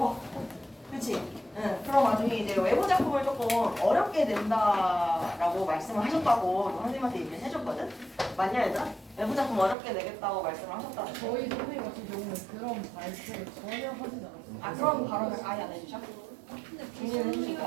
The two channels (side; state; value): left; drops out; at 9.8 s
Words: 그치? 응. 그럼 나중에 이제 외부 작품을 조금 어렵게 낸다라고 말씀을 하셨다고 선생님한테 얘기를 해줬거든? 맞냐, 얘들아? 외부 작품 어렵게 내겠다고 말씀을 하셨다고. 저희 선생님 같은 경우는 그런 발표를 전혀 하지 않았어요. 아, 그런 발언을 아예 안 해주셔? 근데 중요한